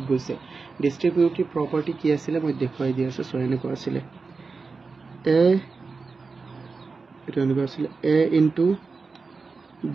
গৈছে ডিস্ট্ৰিবিউটিভ প্ৰপাৰ্টি কি আছিল মই দেখুৱাই দি আছে সো এনেকুৱা আছিল a এটো এনেকুৱা আছিল a into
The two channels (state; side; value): quieter; left; 4.4 dB